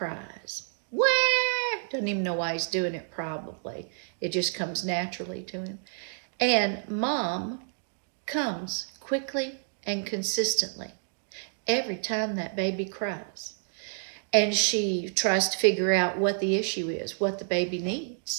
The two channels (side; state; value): left; silent; digital silence